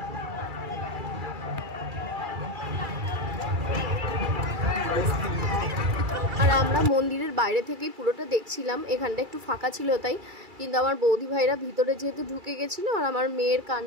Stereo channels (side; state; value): left; late; 2.3 ms